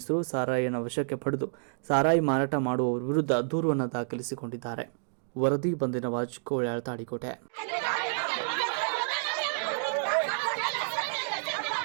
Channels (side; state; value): left; silent; digital silence